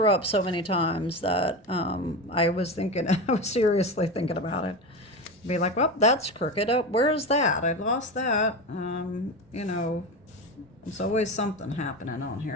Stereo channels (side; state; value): both; normal; correlation 0.22